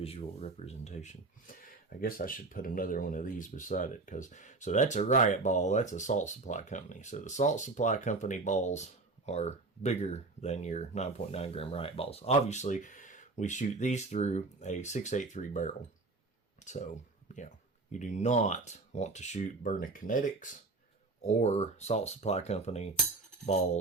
representation. I guess I should put another one of these beside it, because so that's a riot ball, that's a salt supply company. So the salt supply company balls are bigger than your 9.9 gram riot balls. Obviously, we shoot these through a 683 barrel. So, you know, you do not want to shoot Byrna Kinetics or Salt Supply Company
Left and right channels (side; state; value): left; quieter; 3.5 dB